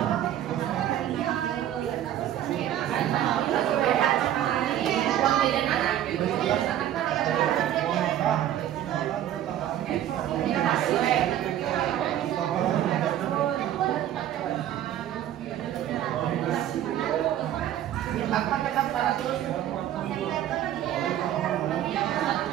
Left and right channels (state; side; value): quieter; left; 11.6 dB